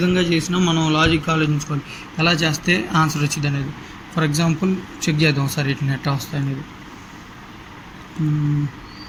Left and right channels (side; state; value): both; identical; correlation 1.00